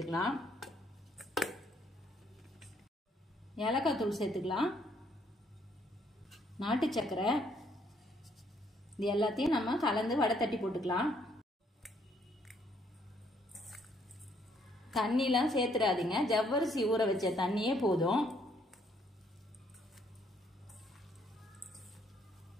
ஏலக்காய் தூள் சேர்த்துக்கலாம். நாட்டு சக்கரை, இது எல்லாத்தையும் நம்ம கலந்து வடை தட்டி போட்டுக்கலாம். தண்ணிலாம் சேர்த்துடாதீங்க, ஜவ்வரிசி ஊற வச்ச தண்ணியே போதும்.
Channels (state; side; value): normal; both; correlation 0.68